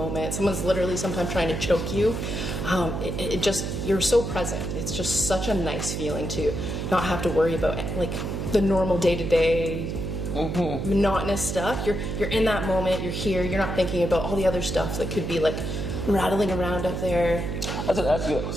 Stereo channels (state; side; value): noise; right; hum, 3 dB below the sound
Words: Someone's literally sometimes trying to choke you. You're so present. It's just such a nice feeling to not have to worry about like the normal day-to-day monotonous stuff. You're in that moment. You're here. You're not thinking about all the other stuff that could be like rattling around up there. I was going to ask you,